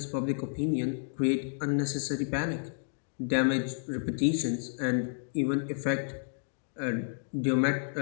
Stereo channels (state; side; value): silent; right; digital silence